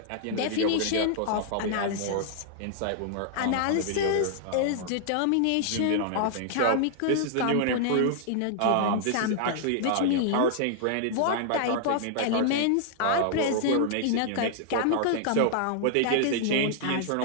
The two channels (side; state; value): both; different; correlation -0.01